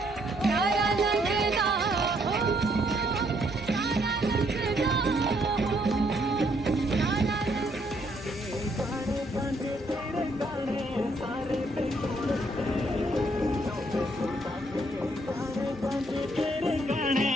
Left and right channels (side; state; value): both; normal; correlation 0.70